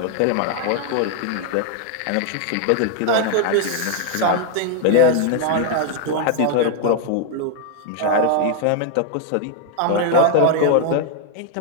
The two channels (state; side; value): different; both; correlation 0.00